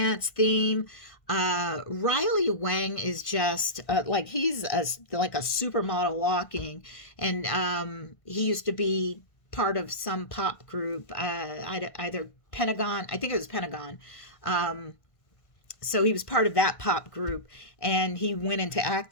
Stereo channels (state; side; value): late; right; 1.5 ms